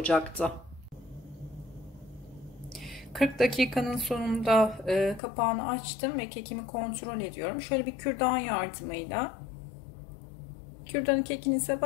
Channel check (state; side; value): drops out; right; at 5.2 s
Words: 40 dakikanın sonunda kapağını açtım ve kekimi kontrol ediyorum. Şöyle bir kürdan yardımıyla kürdanı kekinize